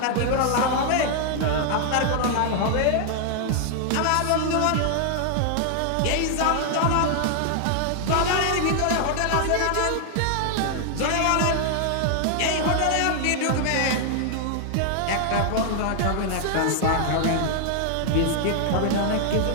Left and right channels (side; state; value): both; different; correlation 0.00